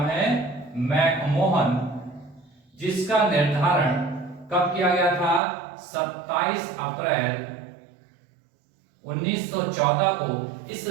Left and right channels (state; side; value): drops out; left; at 5.4 s